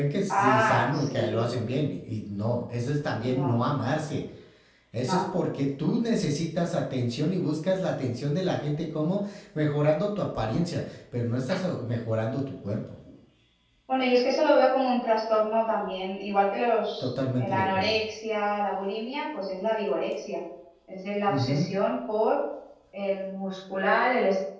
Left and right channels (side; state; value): both; identical; correlation 1.00